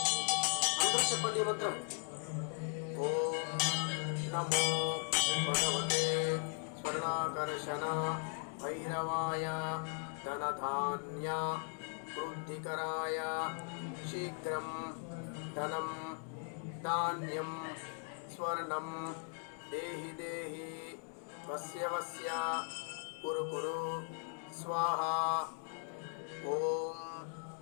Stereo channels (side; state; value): right; silent; 52 dB below the other